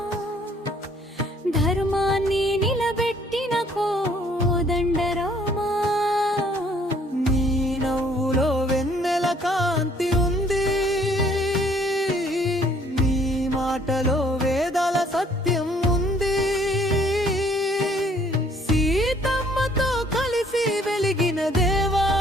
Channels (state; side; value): normal; both; correlation 0.61